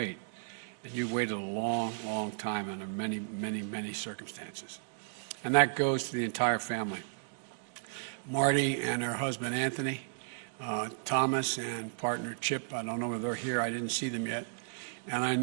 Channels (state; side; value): silent; left; 55 dB below the other